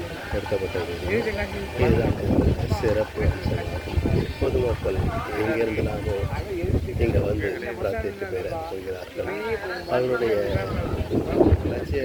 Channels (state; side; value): identical; both; correlation 1.00